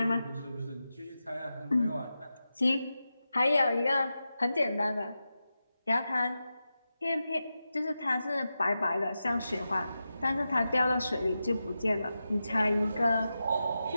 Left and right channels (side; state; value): both; inverted; correlation -0.91